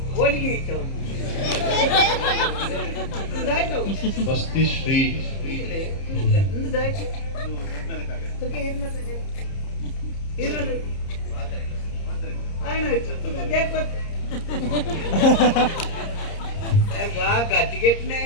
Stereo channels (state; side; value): late; right; 30 ms